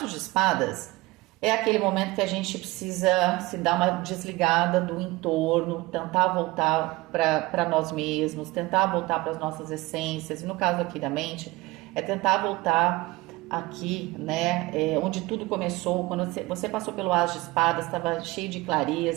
de espadas é aquele momento que a gente precisa se dar uma desligada do entorno, tentar voltar para nós mesmos, tentar voltar para as nossas essências. E no caso aqui da mente, é tentar voltar aqui, né, onde tudo começou, quando você passou pelo as de espadas, estava cheio de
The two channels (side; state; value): left; quieter; 21.0 dB